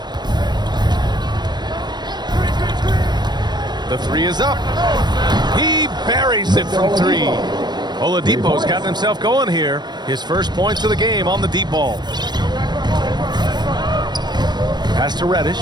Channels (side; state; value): left; late; 0.21 ms